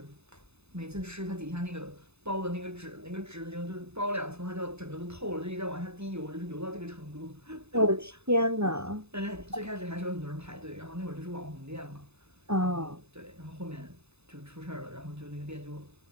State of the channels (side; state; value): left; late; 0.80 ms